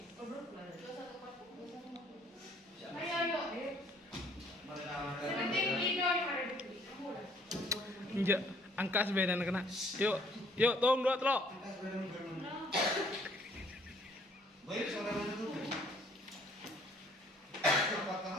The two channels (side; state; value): both; normal; correlation 0.61